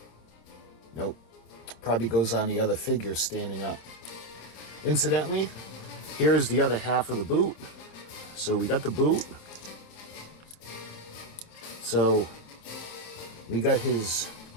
Nope. Probably goes on the other figure standing up. Incidentally, here is the other half of the boot. So we got the boot. So we got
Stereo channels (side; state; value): right; late; 27 ms